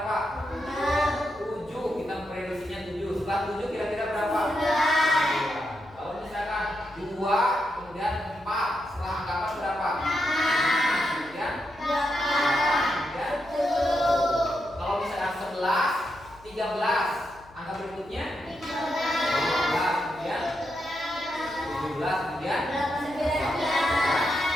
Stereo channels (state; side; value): noise; left; hum, 24 dB below the sound